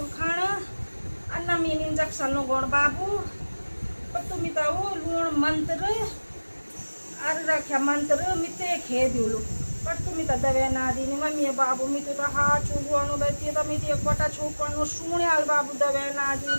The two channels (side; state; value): both; inverted; correlation -1.00